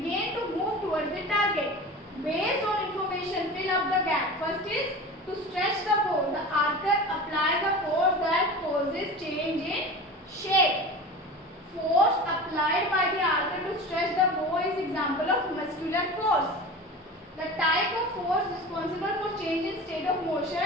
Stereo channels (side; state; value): both; normal; correlation 0.33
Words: to move towards the target. Based on information, fill up the gap. First is to stretch the bow. The archer applies a force that causes change in shape. Force applied by the archer to stretch the bow is example of muscular force. The type of force responsible for change in state of